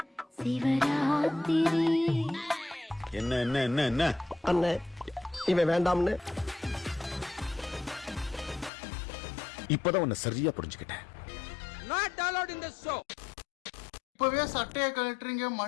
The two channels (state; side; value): drops out; right; at 8.7 s